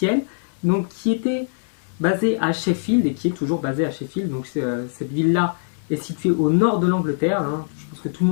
donc qui était basé à Sheffield et qui est toujours basé à Sheffield. Donc cette ville-là est située au nord de l'Angleterre, hein. Je pense que tout le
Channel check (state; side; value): silent; right; 61 dB below the other